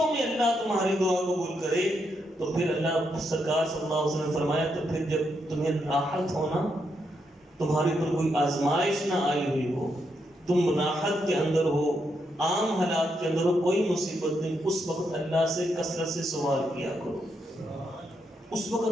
میں اللہ تمہاری دعا قبول کرے، تو پھر اللہ سرکار صلی اللہ علیہ وسلم نے فرمایا تو پھر جب تمہیں راحت ہونا، تمہارے پر کوئی آزمائش نہ آئی ہوئی ہو، تم راحت کے اندر ہو، عام حالات کے اندر ہو، کوئی مصیبت نہیں، اس وقت اللہ سے کثرت سے سوال کیا کرو، اس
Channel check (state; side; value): normal; both; correlation 0.80